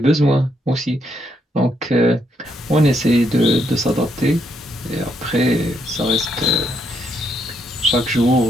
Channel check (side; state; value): both; normal; correlation 0.76